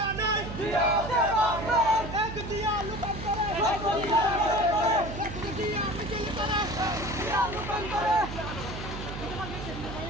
নাই জিয়া আছে বাংলার এক জিয়া লুকান করে এক জিয়া মিছিল করে জিয়া রূপান্তরে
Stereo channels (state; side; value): noise; right; hum, 8 dB below the sound